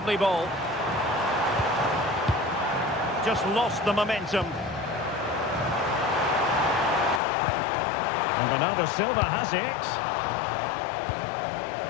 ball. Just lost the momentum. And Bernardo Silva has it.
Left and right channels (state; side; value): drops out; right; at 7.2 s